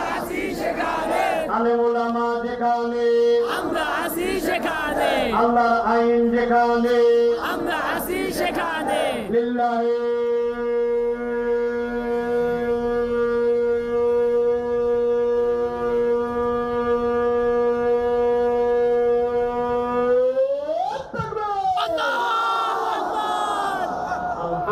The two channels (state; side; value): identical; both; correlation 1.00